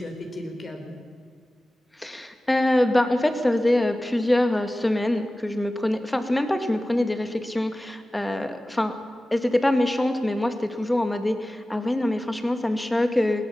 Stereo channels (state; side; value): normal; both; correlation 0.96